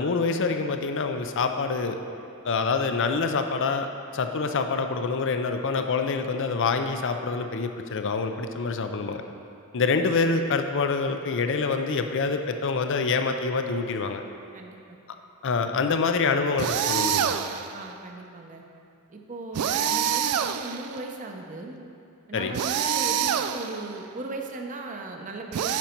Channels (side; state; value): both; normal; correlation -0.01